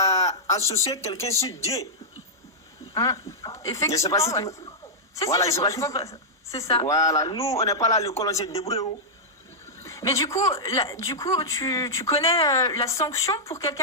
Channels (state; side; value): normal; both; correlation -0.09